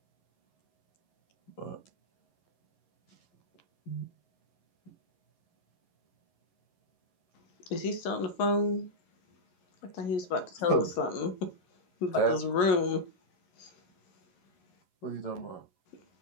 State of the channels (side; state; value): right; late; 11 ms